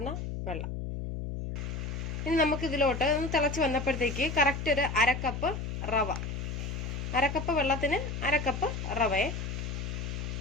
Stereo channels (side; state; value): left; noise; hum, 4 dB below the sound